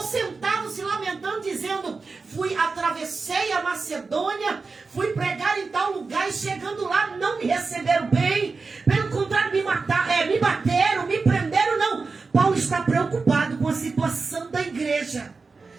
sentado se lamentando, dizendo, atravessei a Macedônia, fui pregar em tal lugar e chegando lá não me receberam bem, pelo contrário me bateram, me prenderam, não. Paulo está preocupado com a situação da igreja.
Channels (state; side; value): quieter; left; 4.3 dB